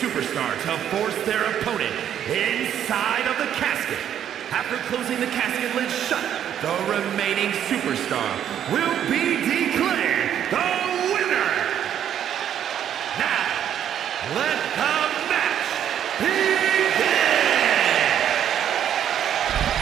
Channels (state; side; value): quieter; left; 9.8 dB